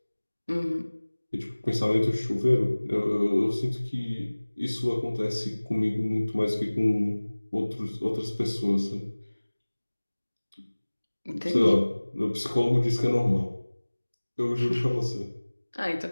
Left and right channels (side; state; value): both; inverted; correlation -1.00